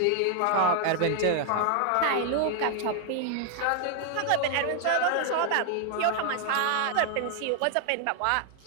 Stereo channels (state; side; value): different; both; correlation 0.00